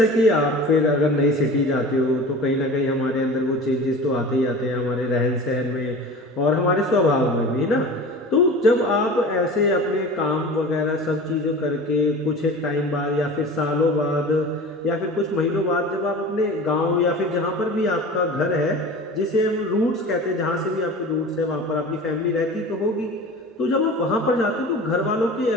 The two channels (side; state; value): both; normal; correlation 0.37